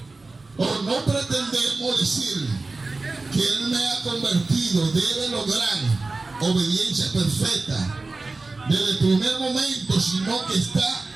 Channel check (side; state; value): left; quieter; 3.5 dB